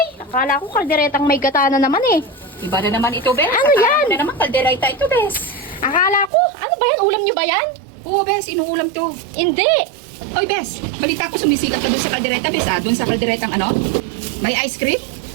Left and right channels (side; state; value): left; drops out; at 6.3 s